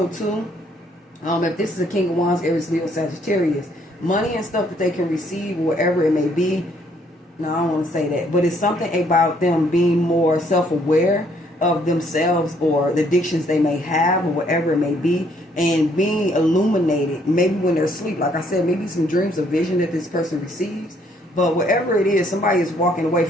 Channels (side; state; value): both; normal; correlation 0.67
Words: too, if this is a King of Wands, Aries, Leo, Sagittarius, money and stuff that they can receive, whatever it may be. No, I don't want to say that, but it's something about them being more self-aware of themselves or the addictions they may have or whatever it may be, and being illuminated maybe when they're asleep. Like I said, maybe some dreams or vision that this person receives. But whatever it is, somebody is walking away